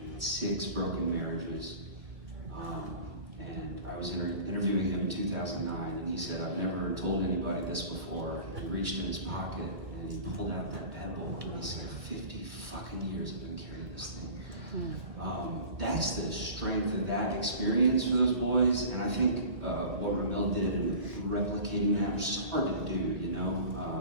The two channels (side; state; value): left; late; 2.2 ms